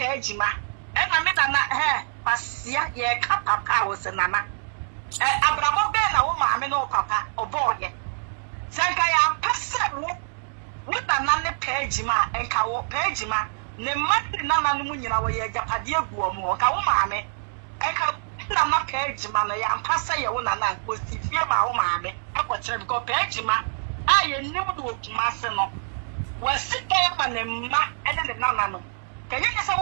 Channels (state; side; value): silent; left; digital silence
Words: ma ena me na pasia ye ka papa wo se nana abramo be na wo maame no papa oboye sanka ya pese wo na ne page ma enka wo page ma ne mati nana no munyina wo ye japade aguo mo ka wo maame enka na page ma na ya pese ye wo nana ko sifie ma wo maame akwokyere bi ko page ma aye nim do okuma se no wasika ya ma ne ma ene ne nana no kanya se